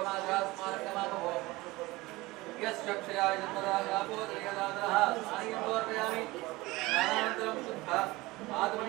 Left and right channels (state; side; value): quieter; left; 20.9 dB